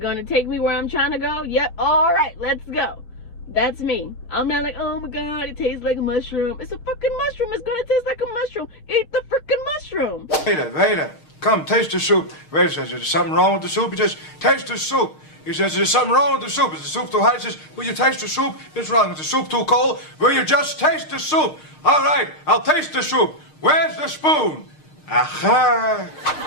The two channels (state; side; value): late; right; 6.5 ms